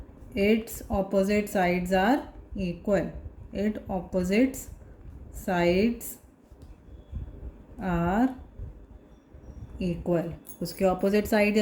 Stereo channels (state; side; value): identical; both; correlation 1.00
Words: its opposite sides are equal. It opposites sides are equal. उसके ऑपोजिट साइड